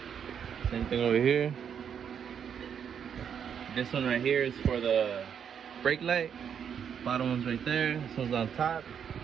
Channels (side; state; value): left; quieter; 7.9 dB